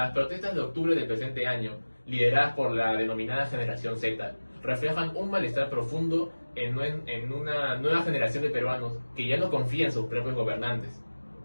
protestas de octubre del presente año, lideradas por la denominada generación Z, reflejan un malestar profundo en una nueva generación de peruanos que ya no confían en sus propios gobernantes.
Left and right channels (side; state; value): both; inverted; correlation -1.00